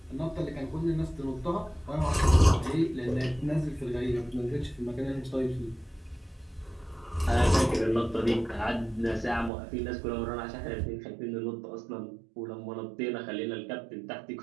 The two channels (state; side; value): drops out; left; at 9.5 s